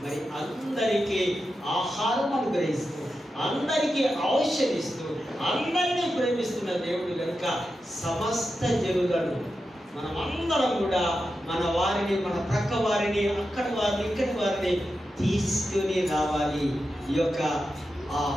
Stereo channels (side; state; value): both; normal; correlation 0.89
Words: మరి అందరికీ ఆహారం అనుగ్రహిస్తూ, అందరికీ ఔషధిస్తూ, అందరినీ ప్రేమిస్తున్న దేవుడు కనుక సమస్త జనులను మనమందరం కూడా మన వారిని, మన ప్రక్క వారిని, అక్కడి వారిని, ఇక్కడి వారిని తీసుకుని రావాలి. ఈ యొక్క ఆ